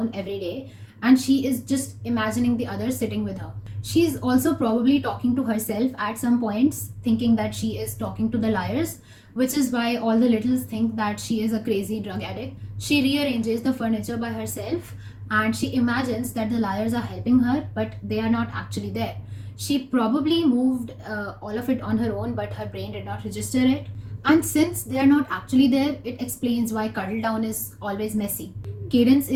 every day and she is just imagining the others sitting with her. She's also probably talking to herself at some points, thinking that she is talking to the liars, which is why all the littles think that she is a crazy drug addict. She rearranges the furniture by herself and she imagines that the liars are helping her, but they are not actually there. She probably moved all of it on her own, but her brain did not register it. And since they are not actually there, it explains why Cuddle Down is always messy. Cadence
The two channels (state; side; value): identical; both; correlation 1.00